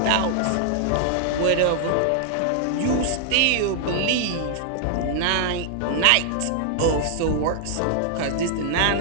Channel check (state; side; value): different; both; correlation -0.01